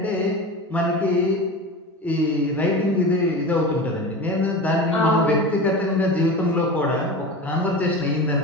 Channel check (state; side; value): normal; both; correlation 0.30